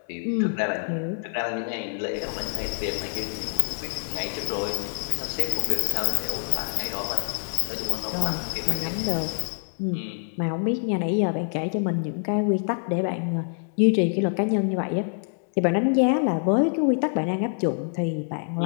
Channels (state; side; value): silent; right; 61 dB below the other